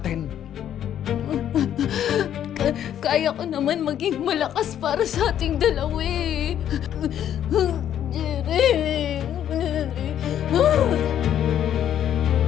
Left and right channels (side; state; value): right; quieter; 10.4 dB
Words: Kaya ko naman maging malakas para sa ating dalawa eh. Jerry.